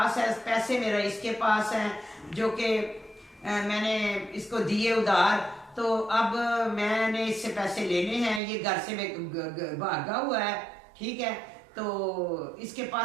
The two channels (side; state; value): left; drops out; at 8.4 s